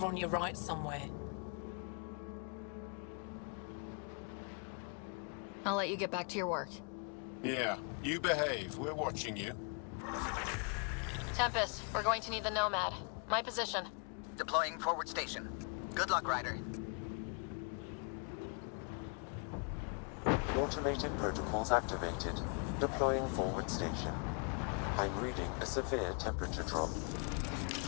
on your right somewhere. I'll let you get back to your work. Yeah, you behave. We're watching you. Tempest, we're going to need the Nomad. My position. Deploying forward station. Good luck, Ryder. Automated protocols activated. Deploying forward station. I'm reading a severe temperature drop.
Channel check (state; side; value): quieter; right; 39.0 dB